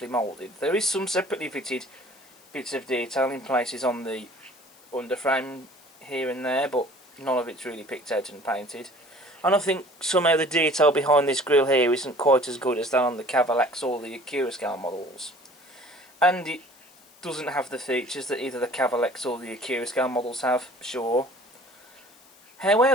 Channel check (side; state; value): left; noise; hiss, 27 dB below the sound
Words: moulded. There is some separately fitted bits of detail in places on the underframe here and there, but none of it's really picked out and painted. And I think somehow the detail behind this grille here isn't quite as good as that on the Cavalax or the Accurascale models. And it doesn't have the features that either the Cavalax or the Accurascale models have, sure.